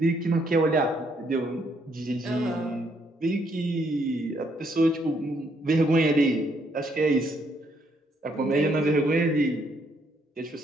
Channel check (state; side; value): normal; both; correlation 0.71